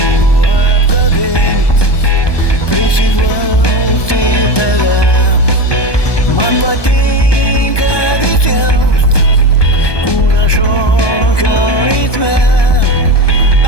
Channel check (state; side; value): late; right; 1.2 ms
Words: apkabint, prisiglausti tave. Man patinka visiems kūno šokio ritme,